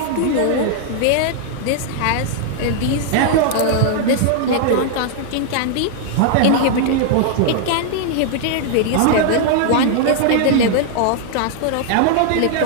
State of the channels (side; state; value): both; different; correlation -0.01